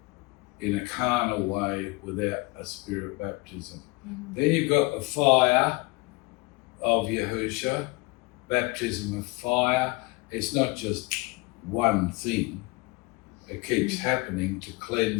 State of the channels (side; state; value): right; quieter; 25.3 dB